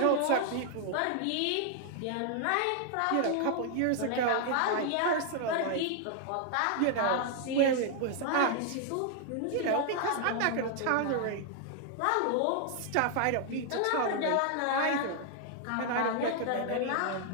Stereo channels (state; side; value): different; both; correlation 0.00